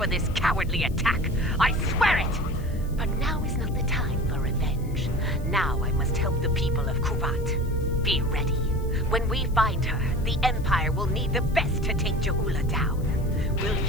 this cowardly attack. I swear it! But now is not the time for revenge. Now I must help the people of Kuvat. Be ready. When we find her, the Empire will need the best to take Je'ula down. Will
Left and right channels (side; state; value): left; noise; hiss, 24 dB below the sound